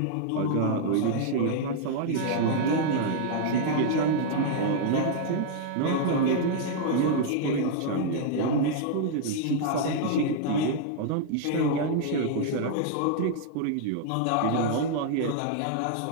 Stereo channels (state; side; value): different; both; correlation -0.01